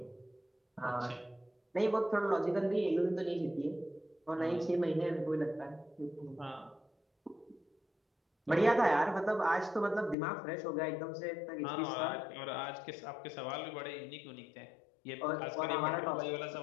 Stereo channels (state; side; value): drops out; right; at 10.2 s